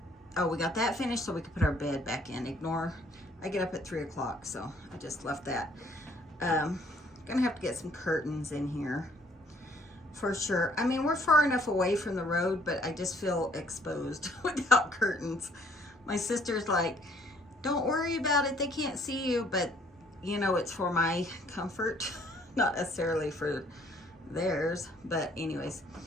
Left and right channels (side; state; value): both; normal; correlation 0.62